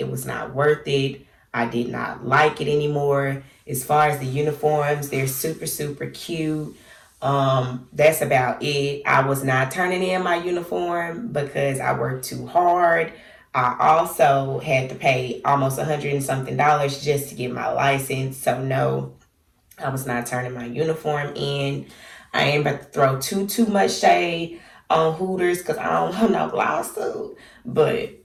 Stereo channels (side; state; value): both; identical; correlation 1.00